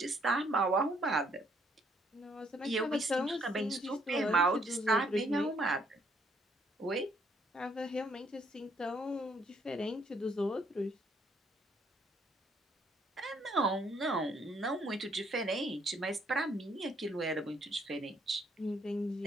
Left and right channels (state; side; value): normal; both; correlation 0.68